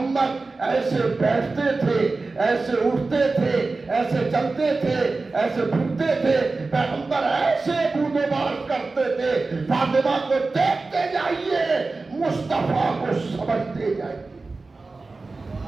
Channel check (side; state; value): left; quieter; 3.7 dB